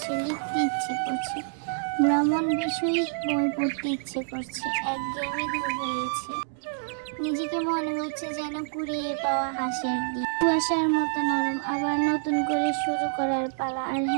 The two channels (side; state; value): left; silent; digital silence